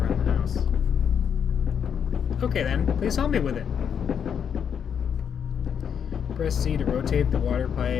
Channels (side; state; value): right; quieter; 7.7 dB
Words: the house. Okay then, please help me with it. Press C to rotate the water